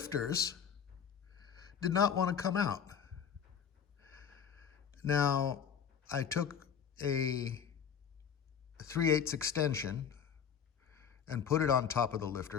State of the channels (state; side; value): quieter; right; 7.7 dB